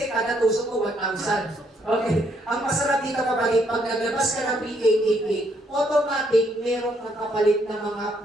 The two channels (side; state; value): both; normal; correlation 0.72